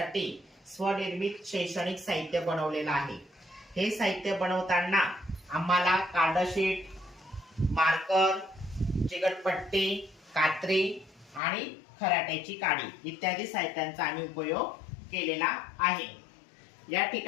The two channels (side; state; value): right; drops out; at 11.4 s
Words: स्वनिर्मित शैक्षणिक साहित्य बनवलेलं आहे। हे साहित्य बनवताना आम्हाला कार्डशीट, मार्कर, चिकटपट्टी, कात्री आणि खराट्याची काडी इत्यादी साहित्यांचा आम्ही उपयोग केलेला आहे। या